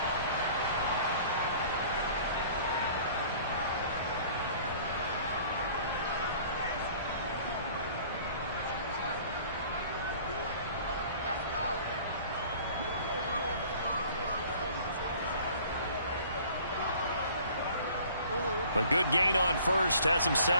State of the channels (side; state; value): both; inverted; correlation -0.51